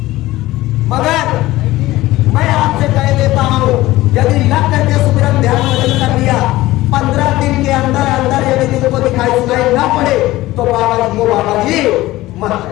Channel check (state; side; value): quieter; right; 17.4 dB